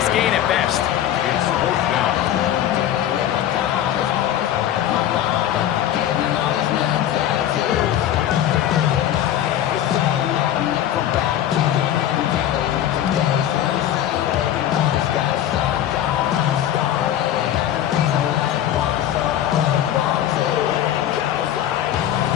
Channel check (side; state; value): right; quieter; 11.4 dB